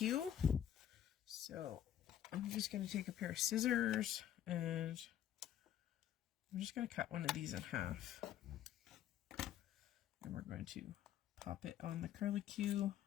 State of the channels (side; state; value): right; quieter; 10.8 dB